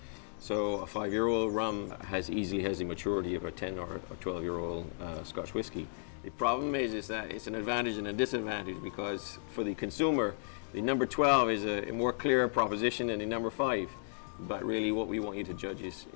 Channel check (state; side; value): silent; right; digital silence